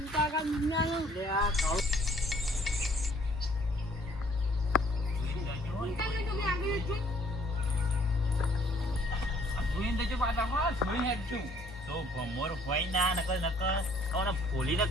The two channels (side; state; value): both; normal; correlation 0.61